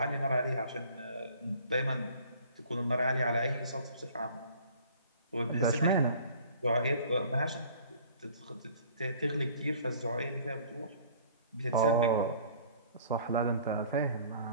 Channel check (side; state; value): both; inverted; correlation -0.51